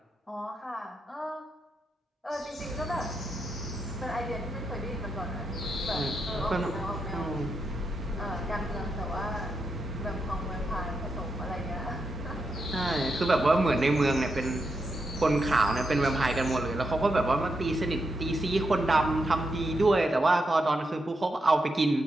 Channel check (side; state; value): both; normal; correlation 0.84